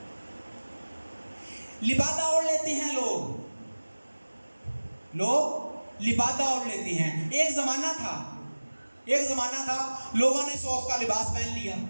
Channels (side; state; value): both; inverted; correlation -1.00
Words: لبادہ اوڑھ لیتے ہیں لوگ لبادہ اوڑھ لیتے ہیں۔ ایک زمانہ تھا لوگوں نے صوف کا لباس پہن لیا،